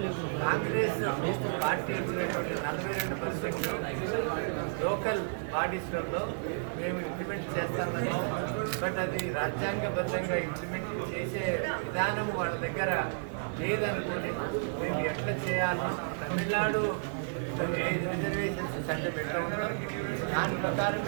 కాంగ్రెస్ పార్టీ ఉన్నటువంటి 42% లోకల్ బాడీస్లలో మేము ఇంప్లిమెంట్ చేస్తామని, బట్ అది రాజ్యాంగబద్ధంగా ఇంప్లిమెంట్ చేసే విధానం వాళ్ళ దగ్గర లేదనుకోని మేము ఎట్లా చేయాలో తమిళనాడు రిజర్వేషన్స్ చట్టం ఎట్లా ఉందో దాని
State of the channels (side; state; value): left; silent; digital silence